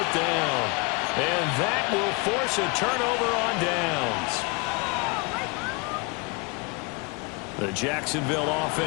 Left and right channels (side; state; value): right; quieter; 29.7 dB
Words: down. And that will force a turnover on downs. The Jacksonville